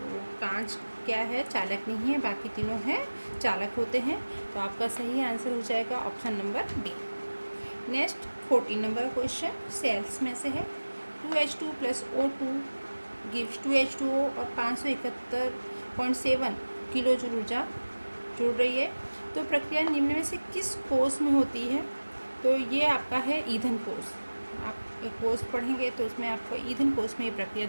कांच क्या है, चालक नहीं है, बाकी तीनों हैं चालक होते हैं। तो आपका सही आंसर हो जाएगा option number B. Next 14 number question cells में से है, 2H2 + O2 गिव्स 2H2O और 571.7 किलो जूल ऊर्जा जुड़ रही है। तो प्रक्रिया निम्न में से किस कोष में होती है। तो ये आपका है ईंधन कोष। आप एक कोष पढ़ेंगे तो उसमें आपको ईंधन कोष में ये प्रक्रिया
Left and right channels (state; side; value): inverted; both; correlation -1.00